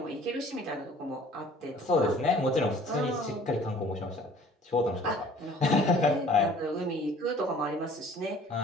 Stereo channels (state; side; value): normal; both; correlation 0.52